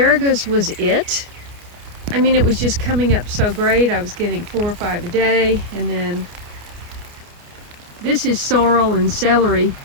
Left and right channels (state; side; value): late; left; 29 ms